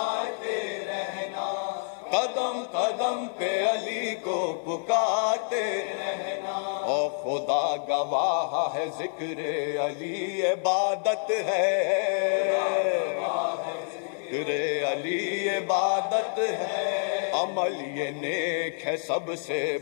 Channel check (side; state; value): right; silent; digital silence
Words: رہنا، قدم قدم پہ علی کو پکارتے رہنا، اور خدا گواہ ہے ذکر علی عبادت ہے، ذکر علی عبادت ہے، عمل یہ نیک ہے سب سے